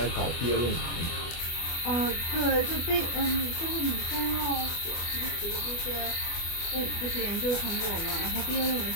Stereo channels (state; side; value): late; right; 24 ms